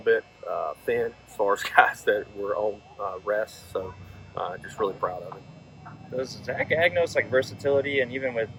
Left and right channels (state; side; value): identical; both; correlation 1.00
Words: bit thin as far as guys that were on rest. So just really proud of him. Does Zach Agnos versatility, and even with